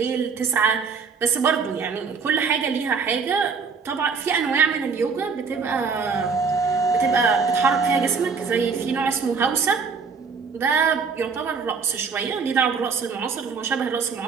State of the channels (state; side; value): quieter; left; 5.3 dB